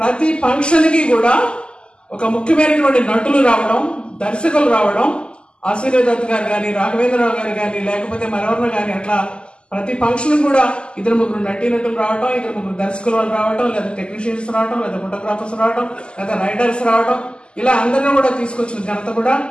ఫంక్షన్కి కూడా ఒక ముఖ్యమైనటువంటి నటులు రావడం, దర్శకులు రావడం, ఆశీర్వాద్ గారు కానీ, రాఘవేంద్రరావు గారు కానీ, లేకపోతే మరెవరిన కానీ, అట్లా ప్రతి ఫంక్షన్ కూడా 2-3 నటీనటులు రావడం, 2-3 దర్శకులు వాళ్ళు రావడం, లేదా టెక్నీషియన్స్ రావడం, లేదా ఫోటోగ్రాఫర్స్ రావడం, లేదా రైడర్స్ రావడం, ఇలా అందరినీ కూడా తీసుకొచ్చిన ఘనత కూడా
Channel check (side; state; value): right; late; 0.051 ms